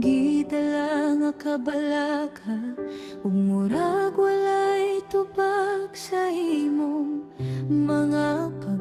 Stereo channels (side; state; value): both; identical; correlation 1.00